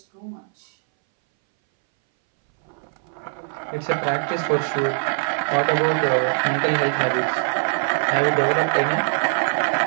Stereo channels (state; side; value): silent; left; 62 dB below the other